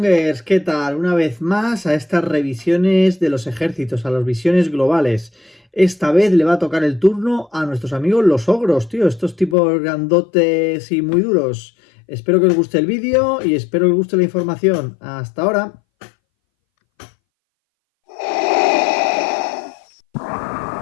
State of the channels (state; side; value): drops out; right; at 9.6 s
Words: ¿qué tal? Una vez más a estas revisiones de los ejércitos, a las visiones globales. Esta vez le va a tocar el turno a nuestros amigos los ogros, tío, estos tipos grandotes y muy duros. Espero que os guste el vídeo y espero que os guste la información. Hasta ahora.